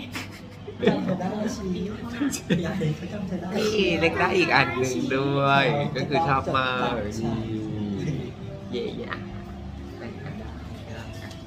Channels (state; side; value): identical; both; correlation 1.00